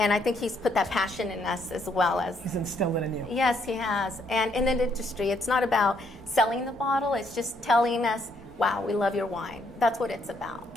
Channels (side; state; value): both; normal; correlation 0.72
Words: I think he's put that passion in us as well as... He's instilled it in you. Yes, he has. And in the industry, it's not about selling the bottle, it's just telling us, wow, we love your wine. That's what it's about.